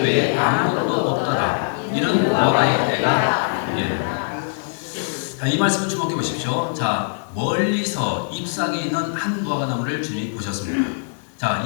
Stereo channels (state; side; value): silent; right; digital silence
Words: 외에 아무것도 없더라. 이는 무화과의 때가 자, 이 말씀을 주목해 보십시오. 자, 멀리서 잎사귀 있는 한 무화과 나무를 주님이 보셨습니다. 자,